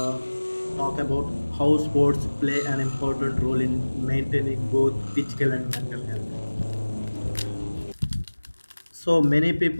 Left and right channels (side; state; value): both; inverted; correlation -1.00